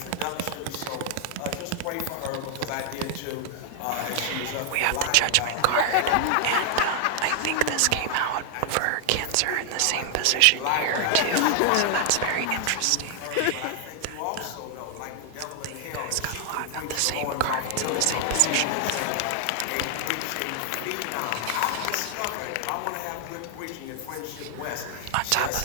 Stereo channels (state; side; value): different; both; correlation 0.00